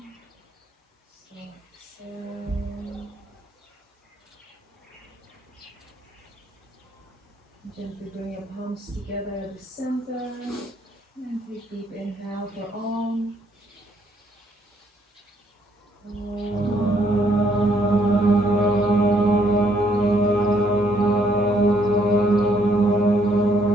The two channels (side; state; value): both; normal; correlation 0.69